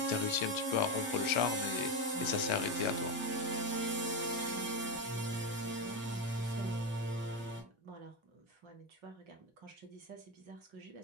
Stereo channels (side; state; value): both; normal; correlation 0.11